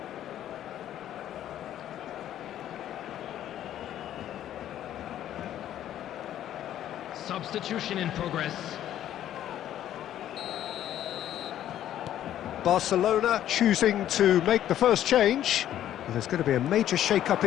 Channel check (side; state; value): right; quieter; 11.6 dB